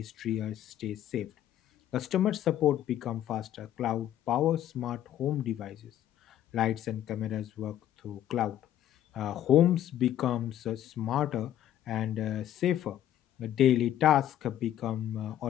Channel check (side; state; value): right; quieter; 11.7 dB